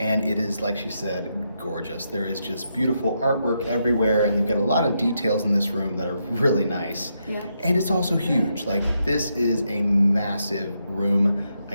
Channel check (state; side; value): inverted; both; correlation -0.81